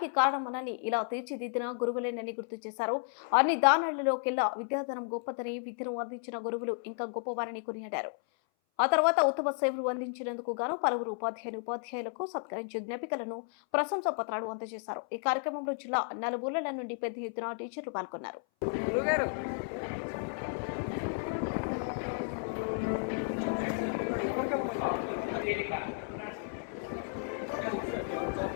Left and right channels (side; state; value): right; silent; 56 dB below the other